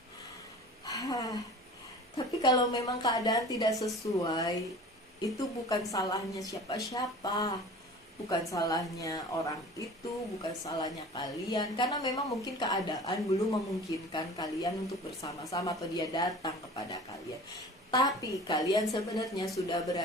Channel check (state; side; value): normal; both; correlation 0.41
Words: Tapi kalau memang keadaan tidak sesuai, itu bukan salahnya siapa-siapa. Bukan salahnya orang itu, bukan salahnya kalian. Karena memang mungkin keadaan belum memungkinkan kalian untuk bersama-sama atau dia datang kepada kalian. Tapi kalian sebenarnya sudah